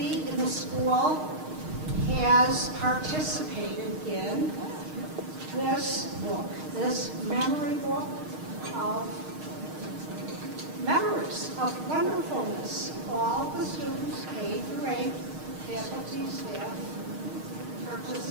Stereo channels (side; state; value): left; late; 6.5 ms